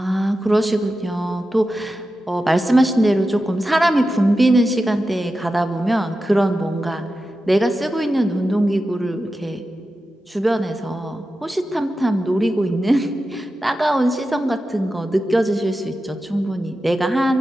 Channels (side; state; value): both; normal; correlation 0.92